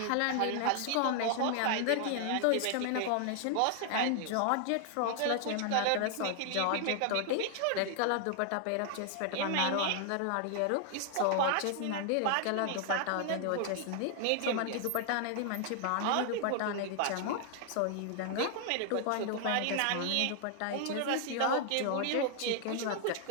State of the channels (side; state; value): both; different; correlation 0.00